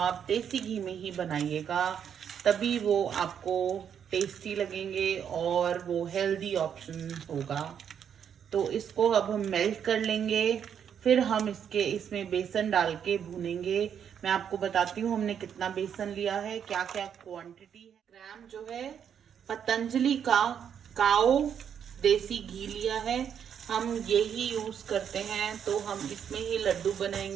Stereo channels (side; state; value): left; quieter; 8.3 dB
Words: देसी घी में ही बनाइएगा, तभी वो आपको टेस्टी लगेंगे और वो हेल्दी ऑप्शन होगा। तो इसको अब हम मेल्ट कर लेंगे, फिर हम इसमें बेसन डाल के भूनेंगे। मैं आपको बताती हूँ हमने कितना बेसन लिया है, क्या क्या क्वांटिटी है। ग्राम जो है पतंजलि का काओ देसी घी लिया है, हम यही यूज करते हैं। तो हम इसमें ही लड्डू